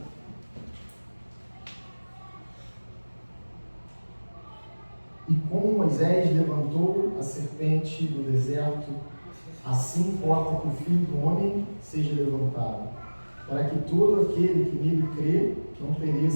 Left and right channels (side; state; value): both; inverted; correlation -1.00